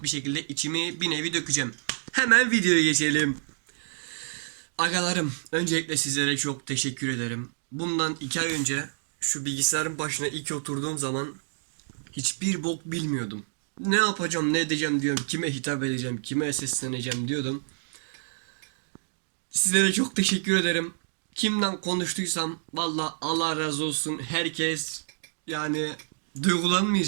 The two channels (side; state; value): left; silent; digital silence